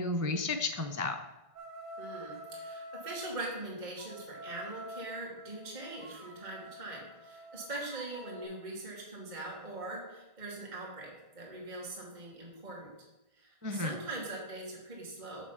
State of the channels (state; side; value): late; left; 1.6 ms